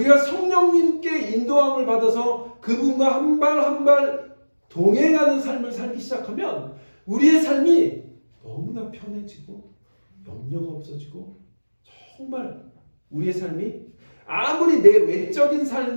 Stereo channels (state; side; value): inverted; both; correlation -1.00